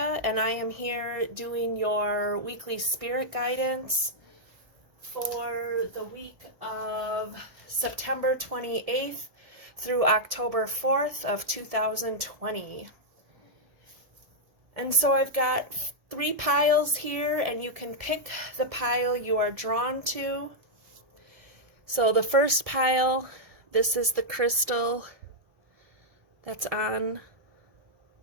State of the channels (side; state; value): left; late; 1.7 ms